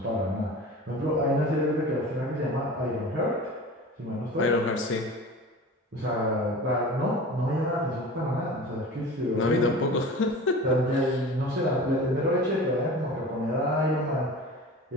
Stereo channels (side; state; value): both; normal; correlation 0.36